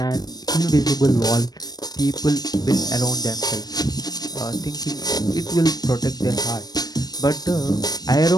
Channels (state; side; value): late; right; 0.19 ms